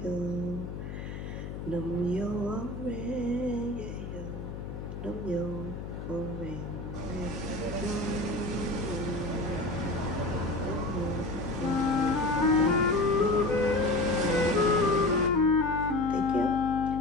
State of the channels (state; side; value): noise; left; hum, 8 dB below the sound